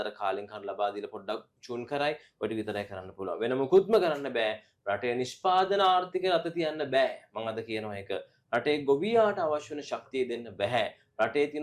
කාලෙන් කාල ලබා දීලා පොඩ්ඩක් චූන් කරයි ඔය ටික විතරයි කරන්න පුළුවන් වෙන මොකුත්ම කරන්න බෑ රටේ නිෂ්පාදන ආර්ථිකය රට තියන්න බෑ මම අද කියනවා ඒක රටේ ගොවියාට අවශ්‍ය වෙන ශක්තිය දෙන්න බෑ රටේ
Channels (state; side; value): identical; both; correlation 1.00